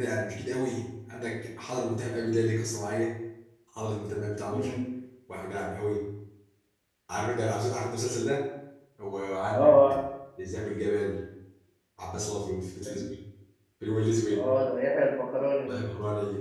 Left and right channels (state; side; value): identical; both; correlation 1.00